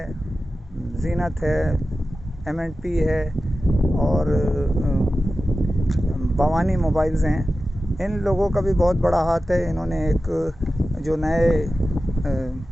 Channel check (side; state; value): both; normal; correlation 0.94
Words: जीनत है, एम&पी है और भवानी मोबाइल्स हैं, इन लोगों का भी बहुत बड़ा हाथ है। इन्होंने एक जो नए